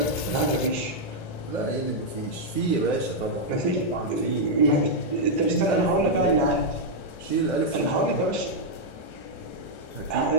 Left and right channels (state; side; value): late; right; 2.4 ms